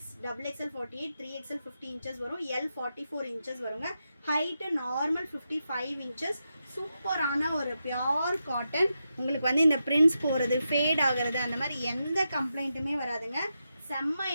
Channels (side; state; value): both; inverted; correlation -0.87